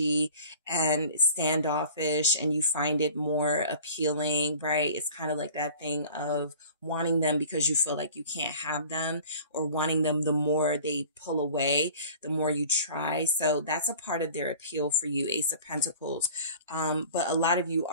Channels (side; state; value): both; inverted; correlation -0.45